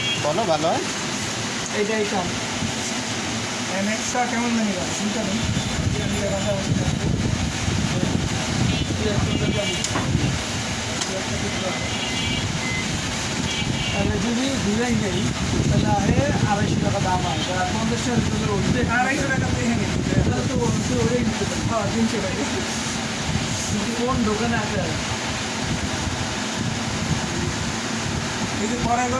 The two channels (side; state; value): both; identical; correlation 1.00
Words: বলো ভালো হয় এইটা নেক্সটটা কেমন জানি না চিন্তা নেই এটা নিলে কথা বলতে তাহলে যদি ডিজাইন নেই তাহলে আরে 250 টাকা দাম হয় 50 টাকা দিলে উঠতে 250 টাকা তো এখানে তাহলে তো বলতে ওটাই নিতে পারে। হ্যাঁ 300 টাকা কোন দোকানে আছে এই যে পরে